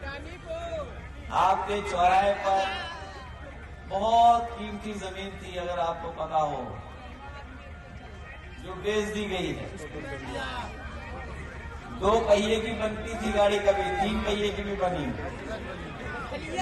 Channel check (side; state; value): both; identical; correlation 1.00